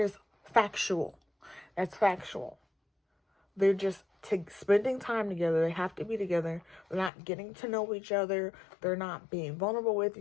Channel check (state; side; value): drops out; right; at 7.1 s